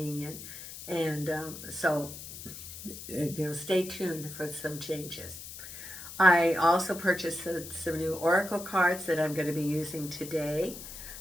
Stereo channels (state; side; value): noise; left; hiss, 12 dB below the sound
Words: and so stay tuned for some changes. I also purchased some new oracle cards that I'm going to be using today,